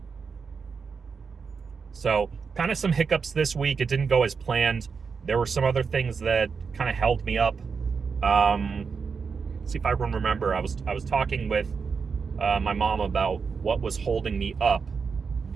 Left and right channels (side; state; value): left; quieter; 5.5 dB